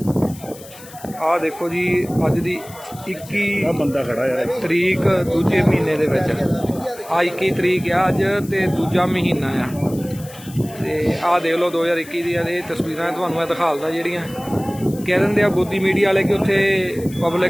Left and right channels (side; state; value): left; noise; hiss, 19 dB below the sound